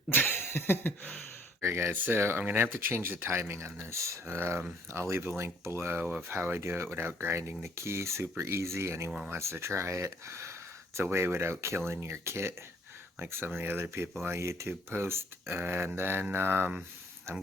Alright guys, so I'm going to have to change the timing on this. I'll leave a link below of how I do it without grinding the key. Super easy. Anyone wants to try it. It's a way without killing your kit, like some of the other people on YouTube post. And then I'm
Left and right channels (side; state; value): both; normal; correlation 0.61